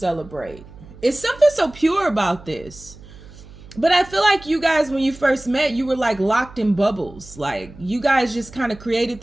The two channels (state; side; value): noise; right; hum, 19 dB below the sound